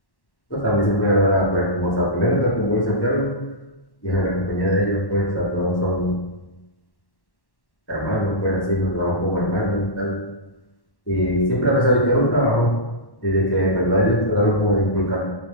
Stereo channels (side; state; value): right; late; 1.1 ms